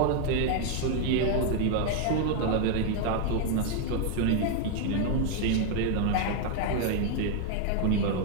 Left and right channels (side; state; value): both; different; correlation 0.00